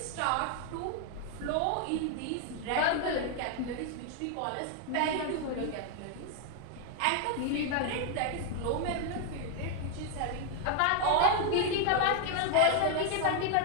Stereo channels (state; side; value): different; both; correlation 0.00